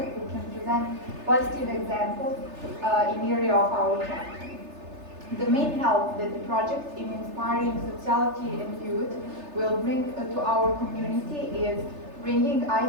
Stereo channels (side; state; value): left; late; 3.3 ms